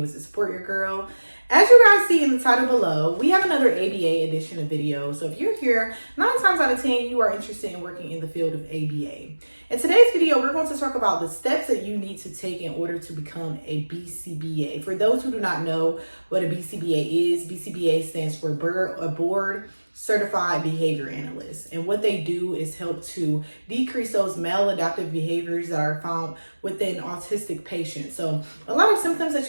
to support your girl. As you guys see in the title below, we have another ABA edition of video. So if you're here, 9 times out of 10, you are interested in working in the field of ABA. In today's video, we're going to talk about the steps that you need to take in order to become a Bcba. For those who do not know what a Bcba is, Bcba stands for Board Certified Behavior Analyst. And what they do is help to decrease those maladaptive behaviors that are found within autistic patients. So a lot of symptoms that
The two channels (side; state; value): both; inverted; correlation -1.00